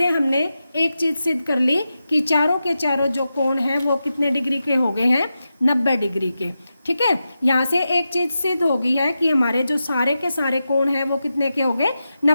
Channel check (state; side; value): inverted; both; correlation -0.90